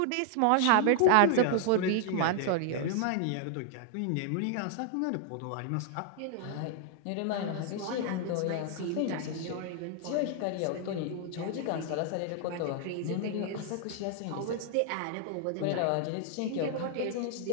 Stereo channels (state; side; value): different; both; correlation 0.00